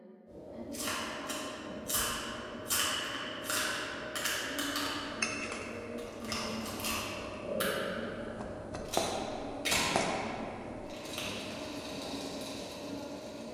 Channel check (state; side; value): identical; both; correlation 1.00